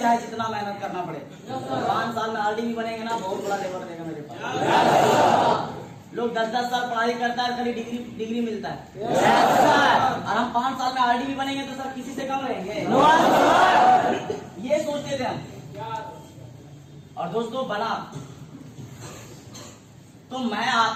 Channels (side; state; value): both; identical; correlation 1.00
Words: जितना मेहनत करना पड़े, 5 साल में आरडी भी बनेंगे ना, बहुत बड़ा लेवल रहेगा मेरे पास। लोग 10-10 साल पढ़ाई करता है, खाली डिग्री मिलता है, और हम 5 साल में आरडी भी बनेंगे तो सर किसी से कम रहेंगे। और दोस्तों बना। तो मैं